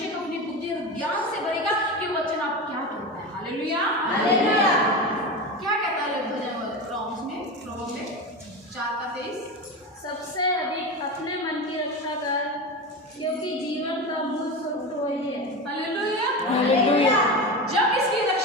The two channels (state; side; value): normal; both; correlation 0.23